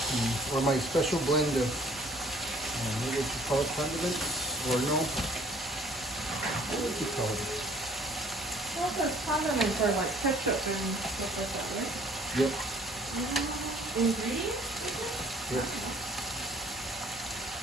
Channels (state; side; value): normal; both; correlation 0.55